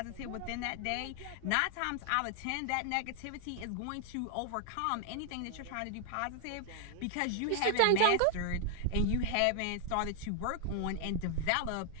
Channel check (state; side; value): different; both; correlation 0.00